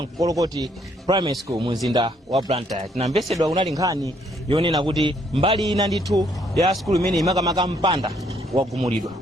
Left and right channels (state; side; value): normal; both; correlation 0.68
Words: Nkolokoti Primary School mu mzinda wa Blantyre. Tinamvesedwa kunali nkhani yonena kuti mbali ina ndithu ya school imene imakamaka mpanda wagumulidwa.